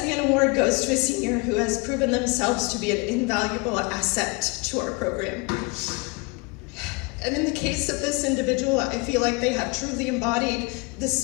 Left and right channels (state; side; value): quieter; right; 28.4 dB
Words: Award goes to a senior who has proven themselves to be an invaluable asset to our program. And in the case of this individual, I feel like they have truly embodied the